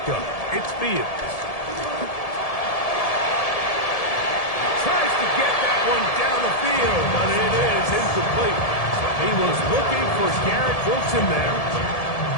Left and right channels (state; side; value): late; right; 1.7 ms